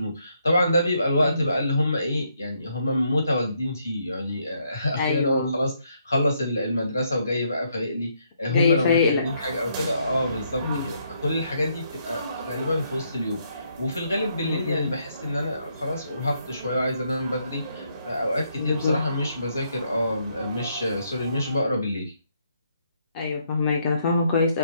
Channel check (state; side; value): inverted; both; correlation -0.74